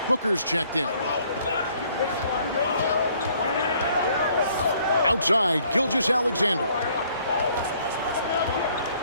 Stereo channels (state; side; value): inverted; both; correlation -0.63